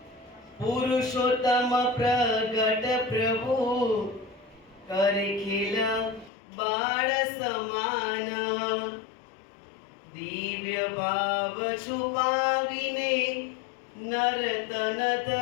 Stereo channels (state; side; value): drops out; right; at 6.3 s